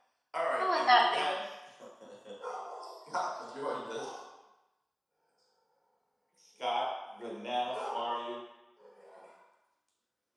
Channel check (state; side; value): identical; both; correlation 1.00